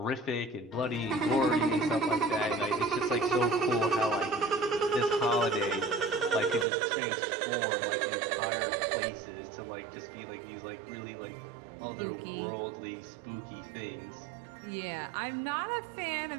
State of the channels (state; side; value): drops out; left; at 6.7 s